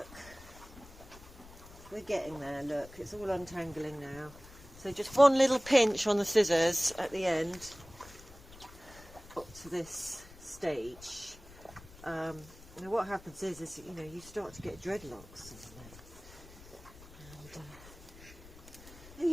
We're getting there, look, it's all untangling now. So just one little pinch on the scissors at the end, up to this stage. Now what happens is you know, you start to get dreadlocks. And, are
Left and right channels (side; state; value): left; noise; rumble, 19 dB below the sound